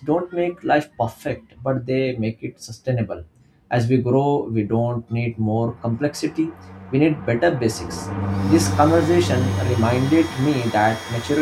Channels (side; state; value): both; identical; correlation 1.00